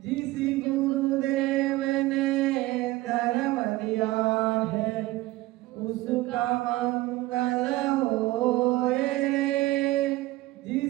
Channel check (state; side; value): quieter; left; 18.5 dB